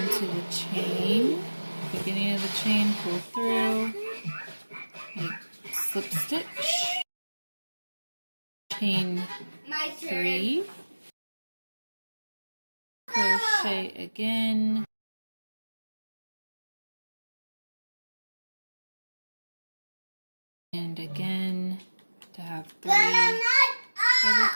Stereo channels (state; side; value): inverted; both; correlation -1.00